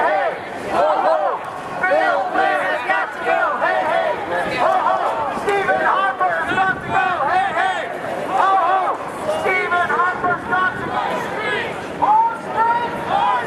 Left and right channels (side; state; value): both; identical; correlation 1.00